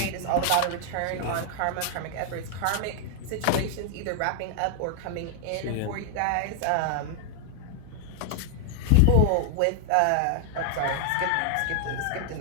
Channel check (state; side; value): different; both; correlation 0.00